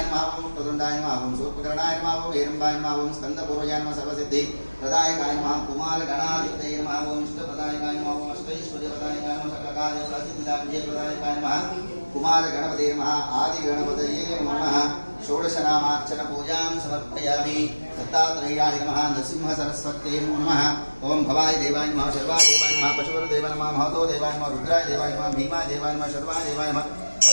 नमः ओं प्रदुण्डाय नमः ओं शूर्पकर्णाय नमः ओं हेरम्बाय नमः ओं स्कन्दपूर्वजाय नमः सर्वसिद्धि प्रदायकाय नमः कुमारगणाधिपतये नमः ओं इष्टप्रदायकाय नमः ओं अष्टैश्वर्यप्रदायकाय नमः सकलकार्यसिद्धिदायकाय नमः कुमार गणपते नमः आदि गणपतये नमः। षोडशनामार्चन पूजां समर्पयामि। दत्तात्रेयाय नमः। नरसिंह सरस्वत्यै नमः। ओं भवाय देवाय नमः शर्वाय देवाय नमः पशुपते देवाय नमः महतो देवाय नमः रुद्राय देवाय नमः भीमाय देवाय नमः शर्वाय देवाय नमः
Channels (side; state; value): both; inverted; correlation -1.00